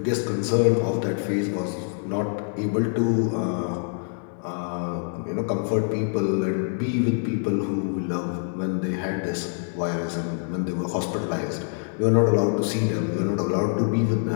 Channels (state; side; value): silent; right; 58 dB below the other